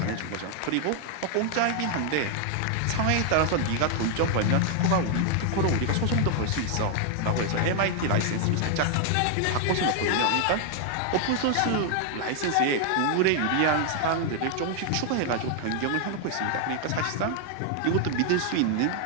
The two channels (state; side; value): different; both; correlation 0.00